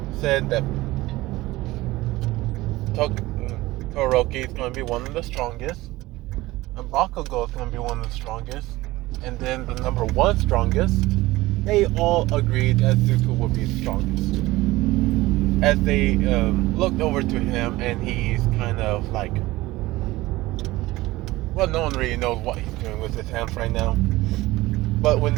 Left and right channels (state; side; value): quieter; left; 18.8 dB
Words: said that Toroki is going to be one of the strongest, and Bakugo is going to be one of the strongest, and then the number one strongest, they all agreed that Zuko would be the strongest. As they looked over to him, and he's kind of like, well, no one really knows what he's doing with his hands right now. But